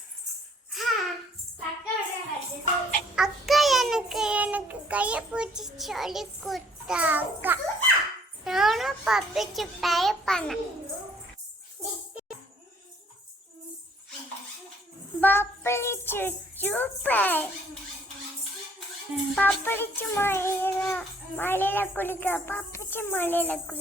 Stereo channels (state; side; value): normal; both; correlation 0.61